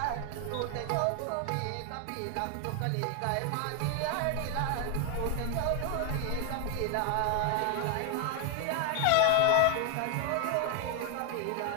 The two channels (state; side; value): different; both; correlation 0.01